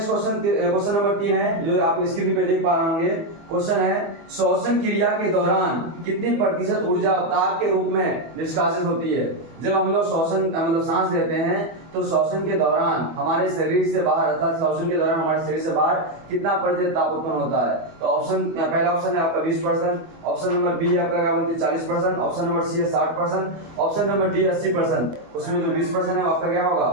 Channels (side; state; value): left; late; 24 ms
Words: क्वेश्चन नंबर 3 है जो आप स्क्रीन पे देख पा रहे होंगे। क्वेश्चन है श्वसन क्रिया के दौरान कितनी प्रतिशत ऊर्जा ताप के रूप में निष्कासित होती है। जब हम लोग श्वसन मतलब सांस लेते हैं तो श्वसन के दौरान हमारे शरीर से बाहर अर्थात श्वसन के दौरान हमारे शरीर से बाहर कितना प्रतिशत ताप उत्पन्न होता है। तो ऑप्शन पहला ऑप्शन है आपका 20%, ऑप्शन नंबर बी आपका क्या बोलते हैं 40%, ऑप्शन नंबर सी है 60%, ऑप्शन नंबर डी 80%। उसमें जो 20% है आपका क्या होगा,